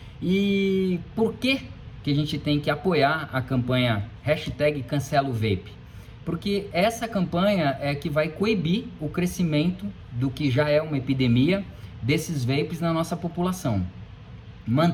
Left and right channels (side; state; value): both; identical; correlation 1.00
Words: E por que a gente tem que apoiar a campanha #CancelaOVape? Porque essa campanha é que vai coibir o crescimento do que já é uma epidemia desses vapes na nossa população.